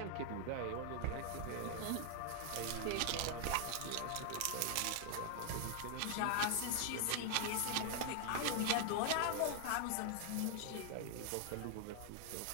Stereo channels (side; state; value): both; different; correlation 0.00